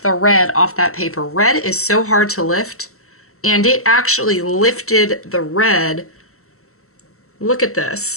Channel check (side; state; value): right; late; 0.64 ms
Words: red off that paper. Red is so hard to lift, and it actually lifted the red. Look at